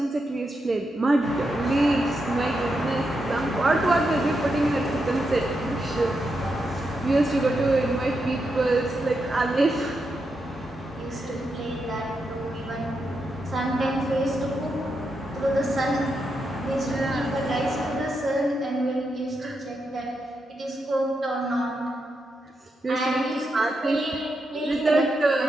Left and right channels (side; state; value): both; normal; correlation 0.84